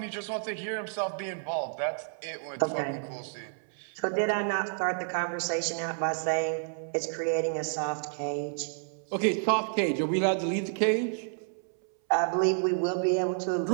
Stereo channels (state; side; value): silent; left; 58 dB below the other